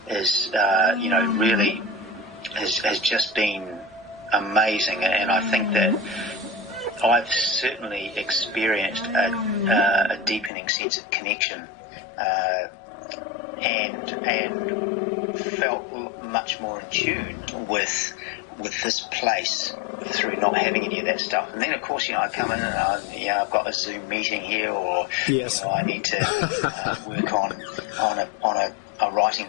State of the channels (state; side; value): drops out; right; at 10.5 s